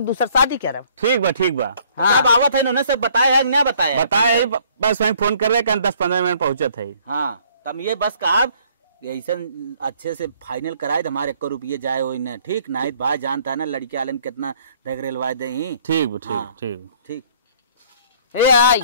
दूसरा शादी करब। ठीक बा ठीक बा। हाँ। तब आवत है इन्होंने सब बताया है ना बताया? बताए बस वही फोन कर रहे 10-15 मिनट पहुंचत है। हाँ तब ये बस कहा ऐसा अच्छे से फाइनल कराए तो हमारे 1 रुपये जाए हो न, ठीक ना भाई जानता है ना लड़की वाले में कितना देख रेलवा दे। ठीक बा, ठीक हाँ। ठीक। ठीक ए आई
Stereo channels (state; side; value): inverted; both; correlation -0.60